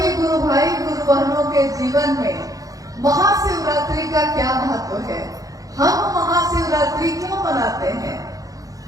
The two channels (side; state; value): left; late; 0.17 ms